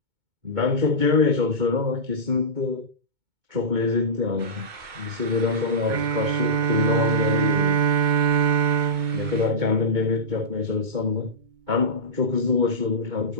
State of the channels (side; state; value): left; late; 2.2 ms